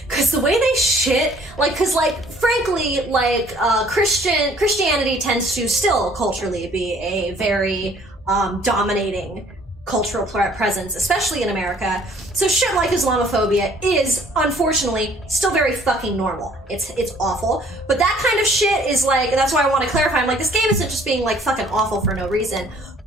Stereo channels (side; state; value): both; normal; correlation 0.57